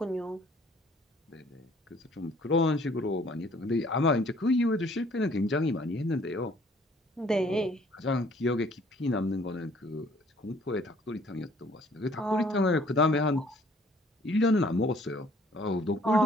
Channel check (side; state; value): both; normal; correlation 0.58